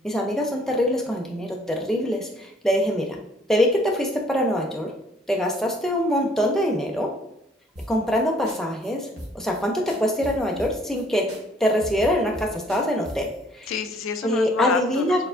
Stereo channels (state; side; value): normal; both; correlation 0.60